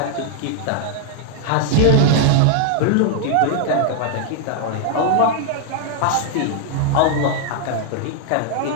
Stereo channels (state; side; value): different; both; correlation 0.00